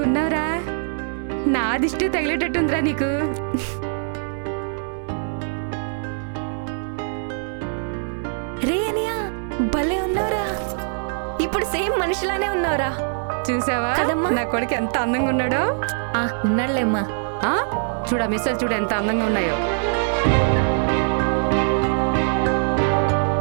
ఉన్నావురా. నా దిష్టి తగిలేటట్టుందిరా నీకు. రే అనియా, భలే ఉన్నావురా. ఇప్పుడు సేమ్ మనిషిలానే ఉన్నావురా. చూసావా కదమ్మా? నా కొడుకు ఎంత అందంగా ఉన్నాడో. ఉన్నాడులేమ్మా. చూడ మిస్సలు చూడ ఎంత అందంగా ఉన్నాయో.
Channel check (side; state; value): left; silent; 64 dB below the other